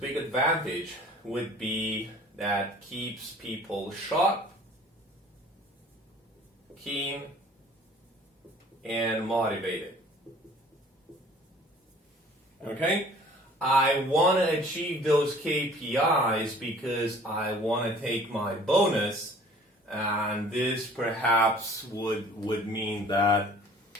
advantage would be that keeps people sharp, keen, and motivated. Okay? I want to achieve those KPIs because I want to take my bonus, and this perhaps would mean that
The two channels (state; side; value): normal; both; correlation 0.50